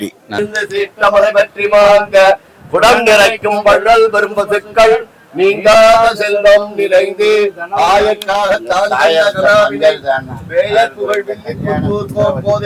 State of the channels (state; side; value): identical; both; correlation 1.00